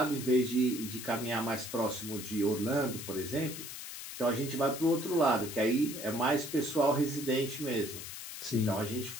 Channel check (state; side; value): noise; left; hiss, 9 dB below the sound